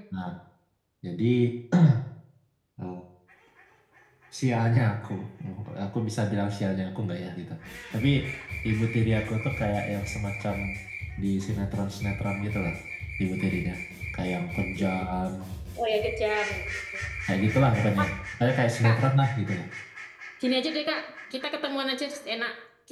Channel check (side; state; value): both; identical; correlation 1.00